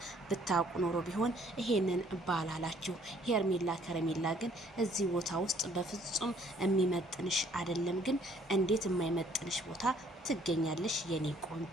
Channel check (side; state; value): both; normal; correlation 0.61